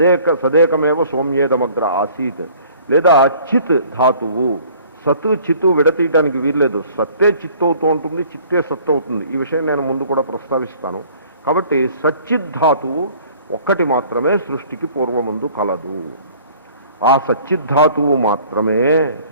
సదేకమేవ సౌమ్యేదమగ్ర ఆసీత్, లేదా చిత్ ధాతువు. సత్తు చిత్తు విడతీయడానికి వీల్లేదు, సత్తే చిత్తు అవుతూ ఉంటుంది, చిత్తే సత్తు అవుతుంది. ఈ విషయం నేను ముందు కూడా ప్రస్తావిస్తాను. కాబట్టి సచ్చిద్ధాతువు ఒక్కటి మాత్రమే సృష్టికి పూర్వముందు కలదు. ఆ సచ్చిద్ధాతువు మాత్రమే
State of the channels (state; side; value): inverted; both; correlation -0.53